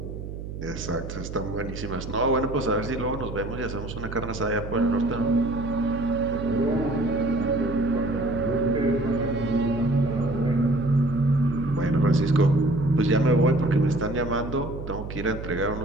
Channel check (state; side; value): noise; right; hum, 9 dB below the sound